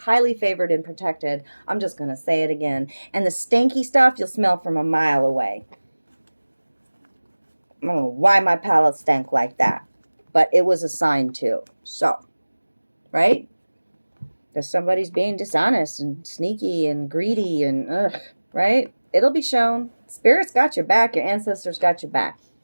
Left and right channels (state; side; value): inverted; both; correlation -1.00